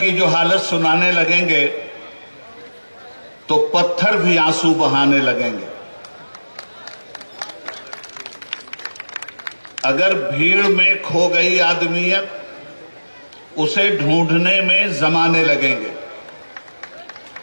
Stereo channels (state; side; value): inverted; both; correlation -1.00